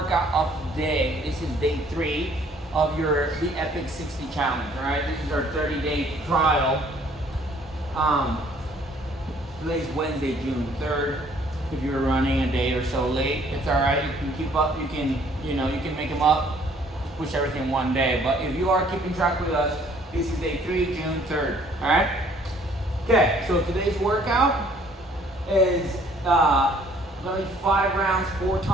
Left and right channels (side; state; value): both; normal; correlation 0.59